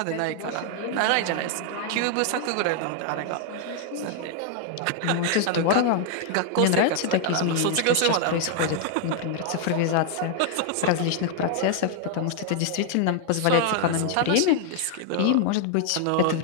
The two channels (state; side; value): different; both; correlation 0.00